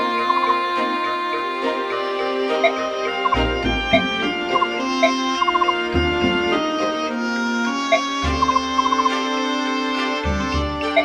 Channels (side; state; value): both; identical; correlation 1.00